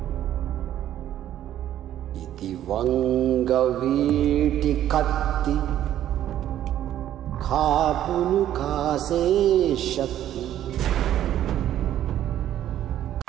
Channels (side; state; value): left; quieter; 11.7 dB